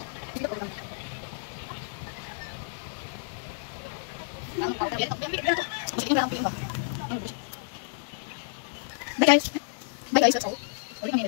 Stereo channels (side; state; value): right; silent; 58 dB below the other